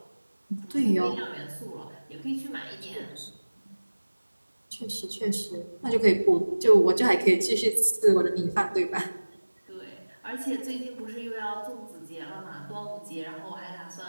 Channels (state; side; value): inverted; both; correlation -1.00